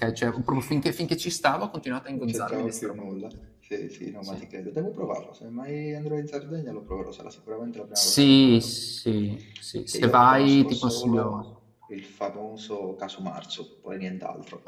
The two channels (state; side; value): identical; both; correlation 1.00